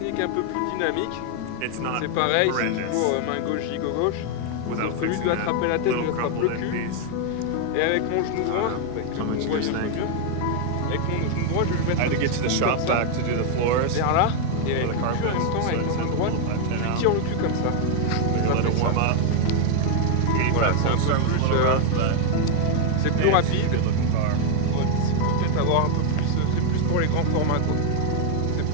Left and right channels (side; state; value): both; different; correlation 0.01